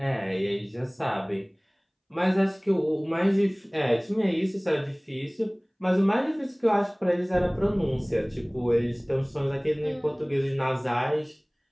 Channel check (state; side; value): identical; both; correlation 1.00